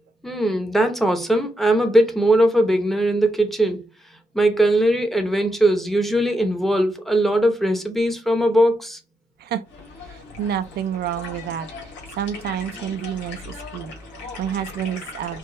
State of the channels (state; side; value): normal; both; correlation 0.82